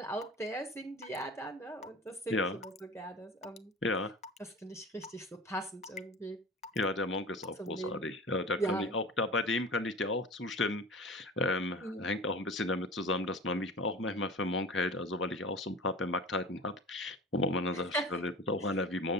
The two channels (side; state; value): both; normal; correlation 0.37